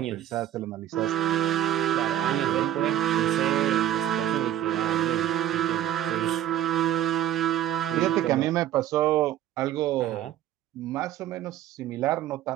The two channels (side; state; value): left; quieter; 12.1 dB